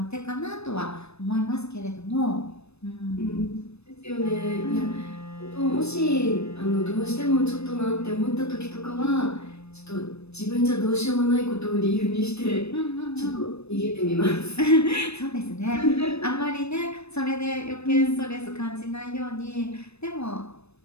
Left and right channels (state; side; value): late; right; 0.80 ms